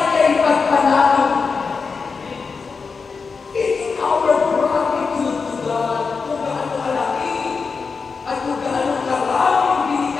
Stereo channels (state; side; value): quieter; right; 5.0 dB